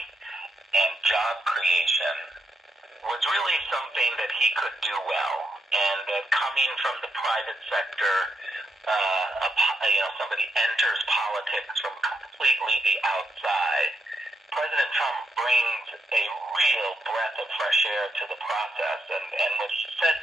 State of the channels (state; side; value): normal; both; correlation 0.80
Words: and job creation was really something that he could do well, and that coming from the private sector, somebody enters politics from completely the outside. President Trump brings a real breath of fresh air to the process, and what he said